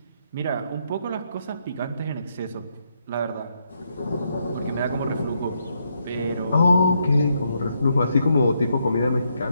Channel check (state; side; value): inverted; both; correlation -0.78